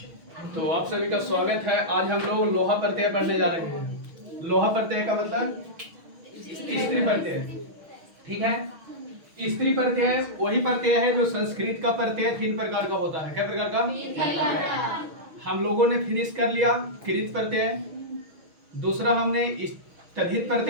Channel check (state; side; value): late; left; 6.3 ms